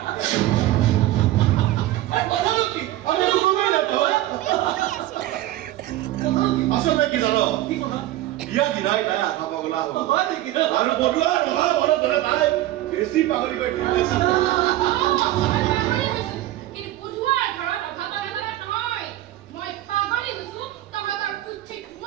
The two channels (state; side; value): quieter; left; 15.2 dB